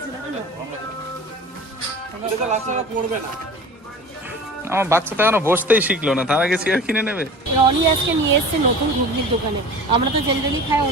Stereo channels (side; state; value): both; normal; correlation 0.39